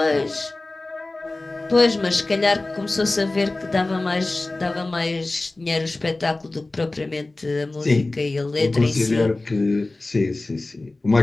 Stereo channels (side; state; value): right; quieter; 3.0 dB